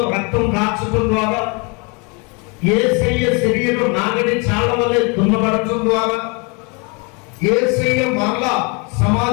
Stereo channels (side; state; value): right; quieter; 31.8 dB